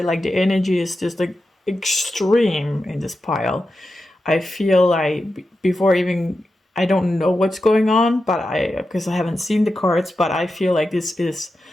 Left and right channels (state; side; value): normal; both; correlation 0.90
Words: Like the energy is just like extreme in this pile. I feel like before even, I don't know what's going on, but because I haven't seen the cards, but I feel like this is